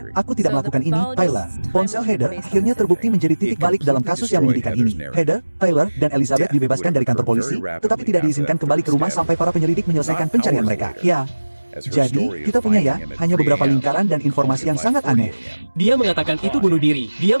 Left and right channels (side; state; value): both; inverted; correlation -1.00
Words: "Aku tidak melakukan ini, Tyler." Ponsel Heather akhirnya terbukti menjadi titik balik dalam kasus yang menyedihkan ini. Heather, Tyler, dan Elizabeth dibebaskan dari kantor polisi, tetapi tidak diizinkan kembali ke rumah sampai para penyelidik menyelesaikan pencarian mereka. Ya. Jadi, kita punya ya, hanya beberapa lingkaran dan informasi yang sangat aneh. Dia mengatakan itu bunuh diri. Dia